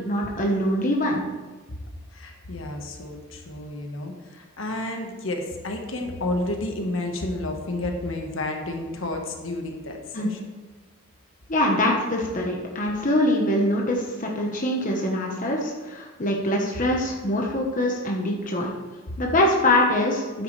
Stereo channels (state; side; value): normal; both; correlation 0.29